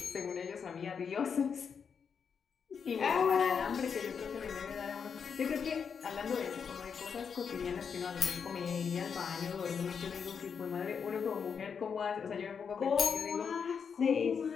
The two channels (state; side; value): quieter; right; 6.5 dB